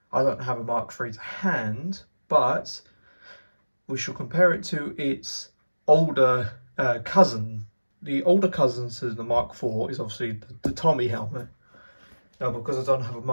I don't have a Mark III to hand, but we shall compare it to its older cousin. The older cousin to the Mark IV is obviously the Tommy helmet. Now, because I don't have a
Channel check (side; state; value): both; inverted; correlation -1.00